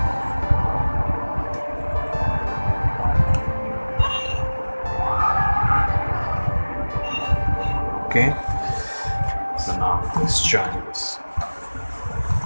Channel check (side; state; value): both; inverted; correlation -1.00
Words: Okay, so now let's join this.